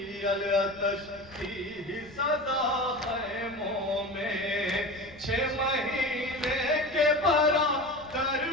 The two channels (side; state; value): left; noise; rumble, 23 dB below the sound